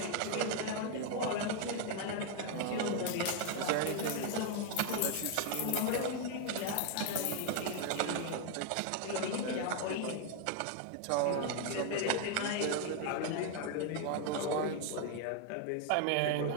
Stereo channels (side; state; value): both; different; correlation 0.00